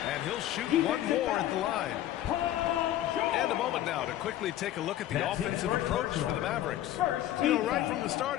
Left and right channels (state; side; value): quieter; right; 13.0 dB